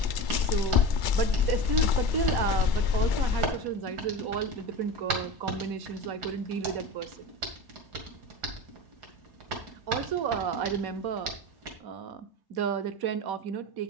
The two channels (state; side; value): late; left; 1.1 ms